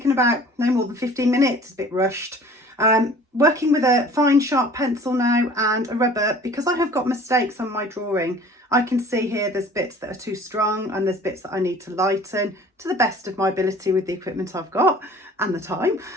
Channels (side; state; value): both; normal; correlation 0.48